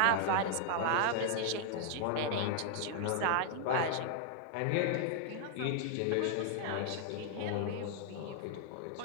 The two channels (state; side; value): different; both; correlation 0.00